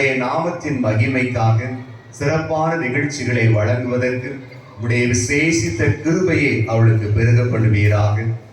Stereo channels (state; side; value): identical; both; correlation 1.00